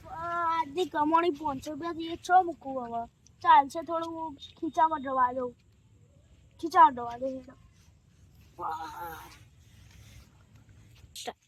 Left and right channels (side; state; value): both; identical; correlation 1.00